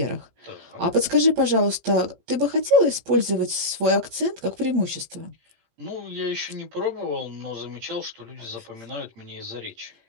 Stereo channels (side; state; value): left; late; 18 ms